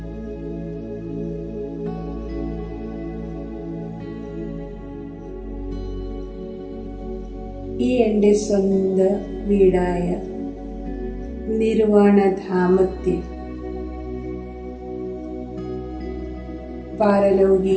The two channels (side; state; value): both; identical; correlation 1.00